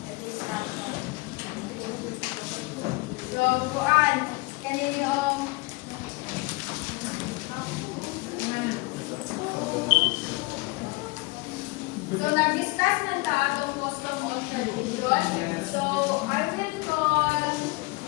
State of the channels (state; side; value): quieter; right; 24.9 dB